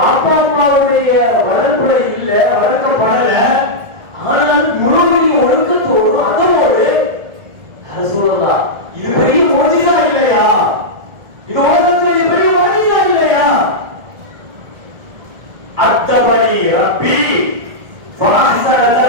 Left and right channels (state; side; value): late; left; 1.8 ms